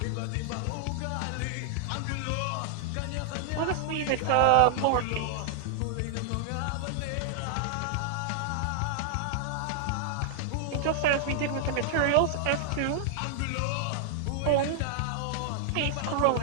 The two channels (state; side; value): different; both; correlation 0.00